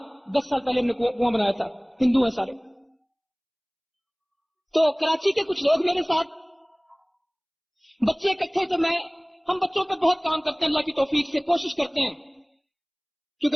10 سال پہلے ہم نے کنواں بنایا تھا، ہندو ہیں سارے. تو کراچی کے کچھ لوگ میرے ساتھ، بچے اکٹھے، تو ہم بچوں پہ بہت کام کرتے ہیں، اللہ کی توفیق سے کوشش کرتے ہیں. کیونکہ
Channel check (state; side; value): identical; both; correlation 1.00